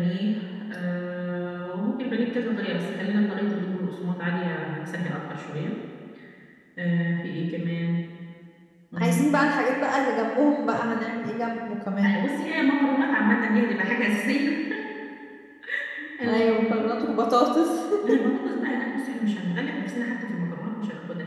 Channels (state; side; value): identical; both; correlation 1.00